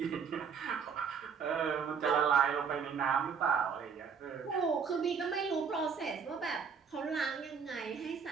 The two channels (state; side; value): quieter; left; 6.3 dB